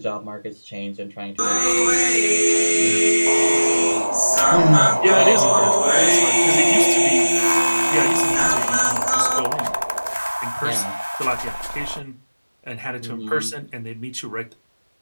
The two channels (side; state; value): both; inverted; correlation -1.00